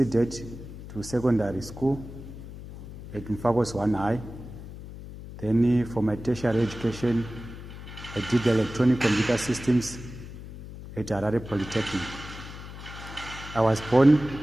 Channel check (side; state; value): left; noise; hum, 13 dB below the sound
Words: to secondary school at Mfakose 1 High. Then for my tertiary education, I did electronic computer systems at Harare Polytechnic. I was born